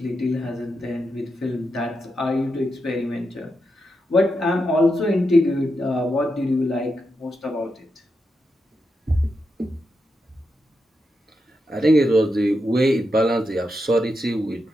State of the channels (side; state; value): both; normal; correlation 0.86